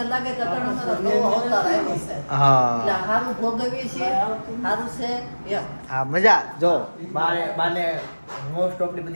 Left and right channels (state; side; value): inverted; both; correlation -1.00